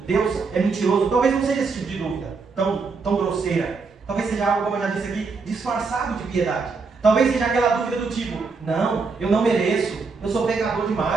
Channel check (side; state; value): left; quieter; 4.6 dB